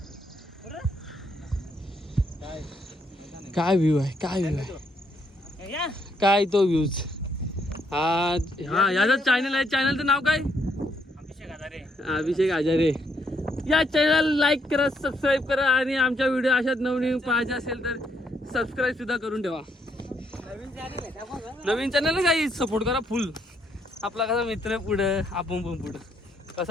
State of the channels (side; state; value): both; normal; correlation 0.73